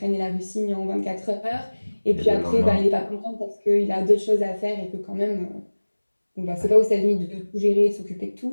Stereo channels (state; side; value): inverted; both; correlation -1.00